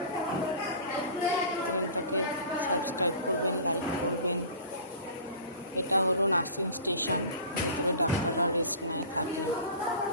চ্যানেলটাকে সাবস্ক্রাইব করবেন, লাইক করবেন। এটা হলো নার্সিং স্টেশন, ভেতরে ডাক্তাররা রেস্ট নেয় থাকে।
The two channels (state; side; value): inverted; both; correlation -0.39